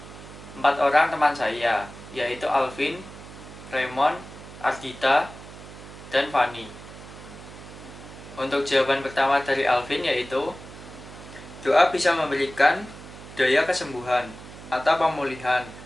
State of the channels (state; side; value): noise; right; hum, 16 dB below the sound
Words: 4 orang teman saya, yaitu Alvin, Raymond, Ardita, dan Fanny. Untuk jawaban pertama dari Alvin yaitu, doa bisa memberikan daya kesembuhan atau pemulihan